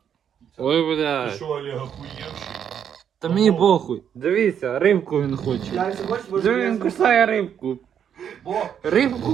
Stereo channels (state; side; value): quieter; left; 8.6 dB